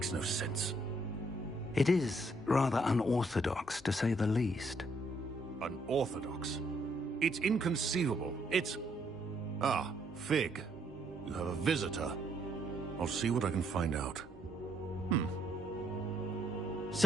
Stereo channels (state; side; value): normal; both; correlation 0.71